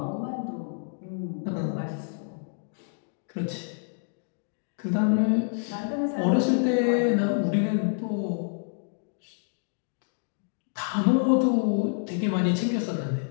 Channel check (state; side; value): silent; right; digital silence